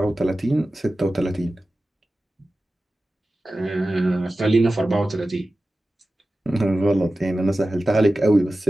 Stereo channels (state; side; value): normal; both; correlation 0.95